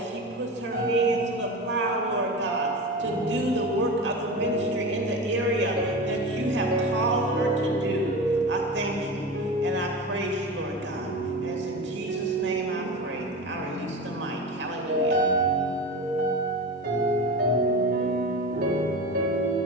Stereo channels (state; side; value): normal; both; correlation 0.28